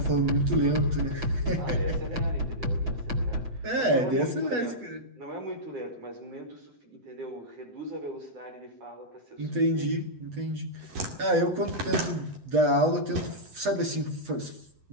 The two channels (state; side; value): late; left; 8.2 ms